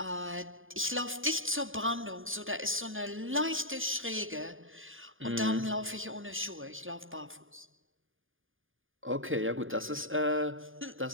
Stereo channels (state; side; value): late; left; 0.59 ms